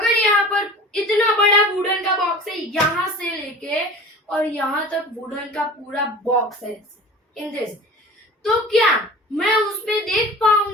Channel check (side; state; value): both; normal; correlation 0.39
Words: यहाँ पर इतना बड़ा वुडन का बॉक्स है, यहाँ से लेके और यहाँ तक वुडन का पूरा बॉक्स है इन दिस, तो क्या मैं उस पे देख